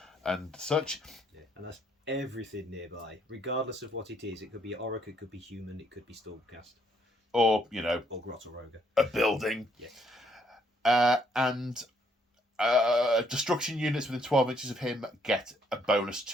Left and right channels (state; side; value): normal; both; correlation 0.69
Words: such. Yeah, and that's everything nearby, regardless of what it is. It could be Orruk, it could be human, it could be Stormcast, or or Grotoroga. A building. Yeah. And destruction units within 12 inches of him get a bonus